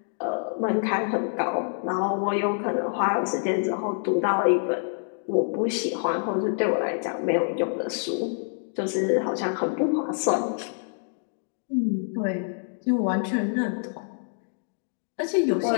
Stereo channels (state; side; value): silent; right; digital silence